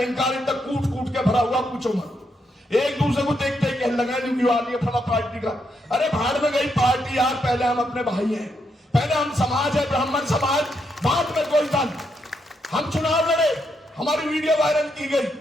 इतना कूट कूट के भरा हुआ, पूछो मत। एक दूसरे को देखते ही कहने लगा क्यों आ रही है फला पार्टी का, अरे भाड़ में गई पार्टी यार, पहले हम अपने भाई हैं, पहले हम समाज है, ब्राह्मण समाज, बाद में कोई दल। हम चुनाव लड़े, हमारी वीडियो वायरल की गई,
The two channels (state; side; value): normal; both; correlation 0.79